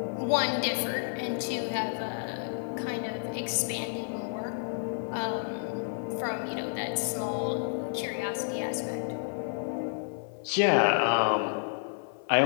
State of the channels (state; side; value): silent; right; 58 dB below the other